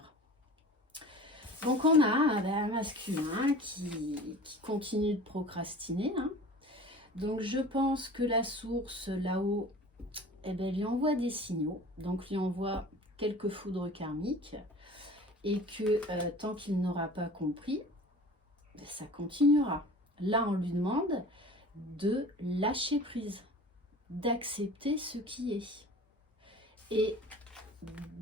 Donc on a un masculin qui continue de procrastiner. Hein. Donc je pense que la source là-haut, lui envoie des signaux. Donc lui envoie quelques foudres karmiques. Et que tant qu'il n'aura pas compris, ça continuera. Là on lui demande de lâcher prise, d'accepter ce qui est. Et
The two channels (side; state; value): both; normal; correlation 0.41